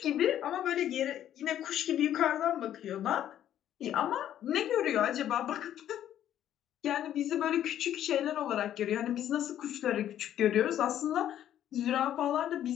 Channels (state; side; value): quieter; right; 11.1 dB